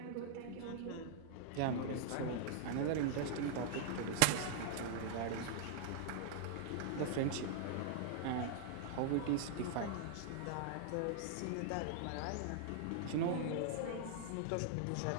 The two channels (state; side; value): different; both; correlation -0.01